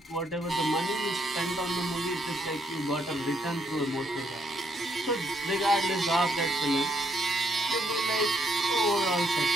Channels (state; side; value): normal; both; correlation 0.74